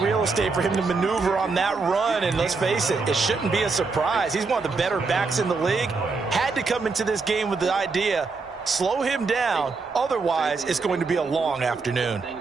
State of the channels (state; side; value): quieter; left; 4.3 dB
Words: real estate for him to maneuver on that run, and let's face it, it shouldn't be a surprise. He's one of the better backs in the league. Had to come into this game with the idea, slow him down, otherwise it's going to be a long afternoon.